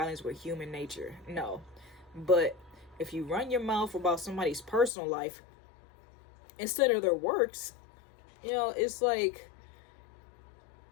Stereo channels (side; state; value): right; drops out; at 4.9 s